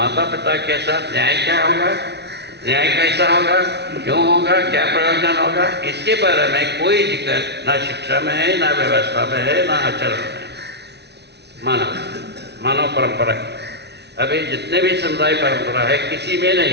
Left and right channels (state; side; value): late; left; 0.49 ms